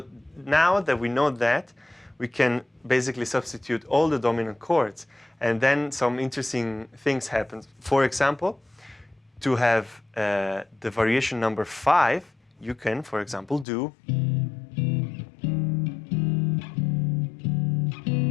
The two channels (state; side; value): drops out; right; at 13.7 s